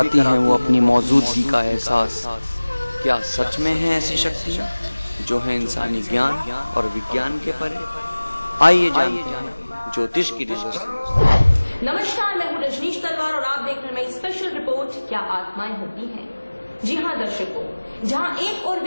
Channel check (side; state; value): both; inverted; correlation -1.00